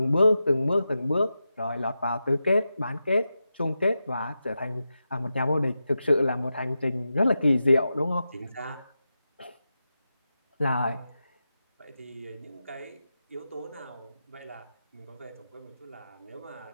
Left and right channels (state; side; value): inverted; both; correlation -0.90